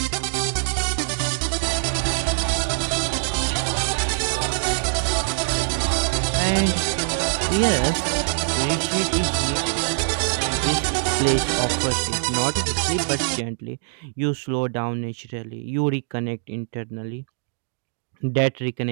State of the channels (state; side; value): silent; left; 63 dB below the other